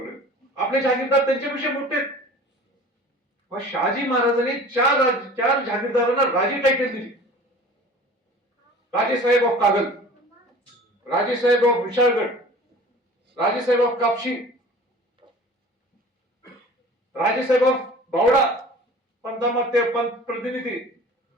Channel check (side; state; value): both; normal; correlation 0.43